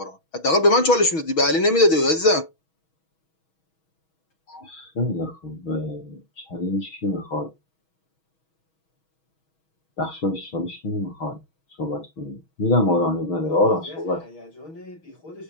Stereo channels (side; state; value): right; late; 6.3 ms